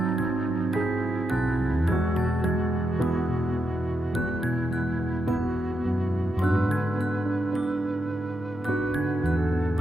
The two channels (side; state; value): both; normal; correlation 0.84